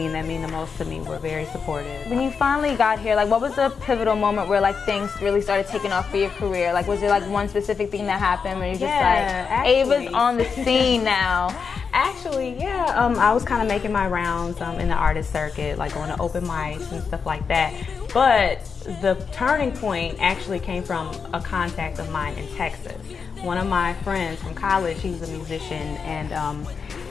and that mean the most to me were very supportive. When you finally got here, like, what was the pivotal moment where like things really started taking off for your career? Like, was there like one specific thing that happened where you're just like, Ava's on the scene now? Actually, yeah. I was kind of making my rounds in the artist circuit, like going to open mics and stuff like that. But the turning point actually came from a contact of mine in Texas. One of my friends from college, he was a musician, and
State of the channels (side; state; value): right; quieter; 5.7 dB